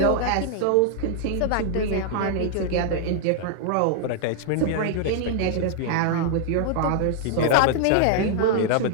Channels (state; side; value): different; both; correlation -0.01